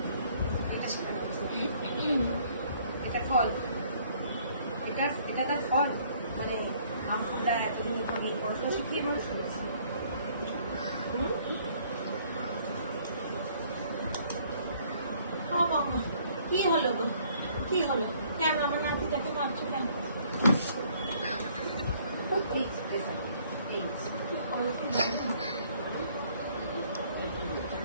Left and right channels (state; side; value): inverted; both; correlation -0.61